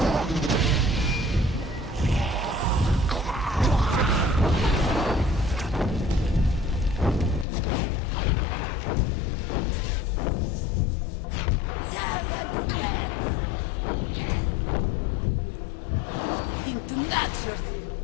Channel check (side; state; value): right; drops out; at 7.5 s